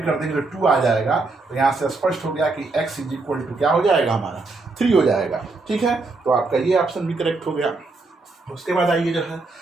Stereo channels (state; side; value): quieter; left; 3.6 dB